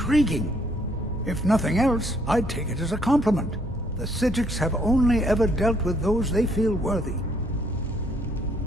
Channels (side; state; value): both; normal; correlation 0.67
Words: If nothing else, I'd take it as a compliment. The Psijics have only ever dealt with those they feel worthy.